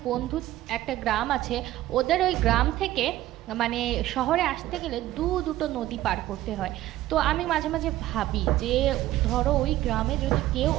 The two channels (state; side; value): quieter; left; 15.0 dB